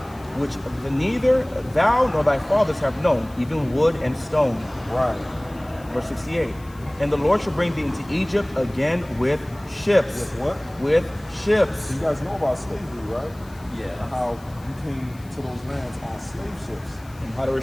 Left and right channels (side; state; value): left; noise; hiss, 26 dB below the sound